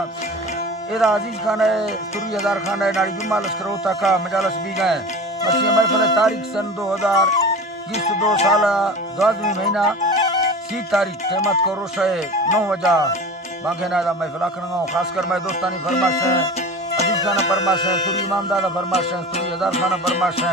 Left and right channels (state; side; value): normal; both; correlation 0.35